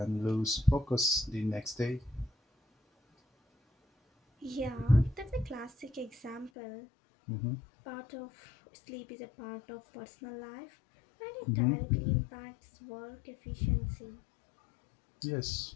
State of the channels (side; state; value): right; drops out; at 6.5 s